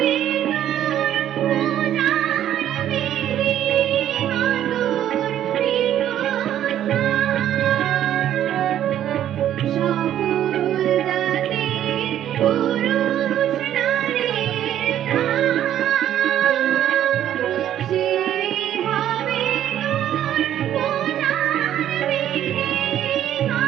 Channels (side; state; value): left; quieter; 11.2 dB